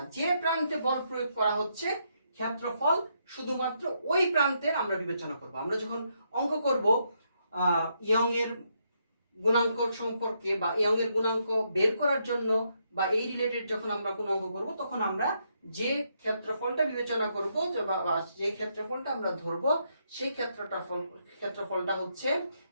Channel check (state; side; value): inverted; both; correlation -0.77